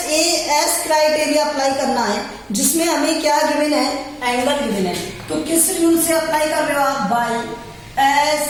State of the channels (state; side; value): identical; both; correlation 1.00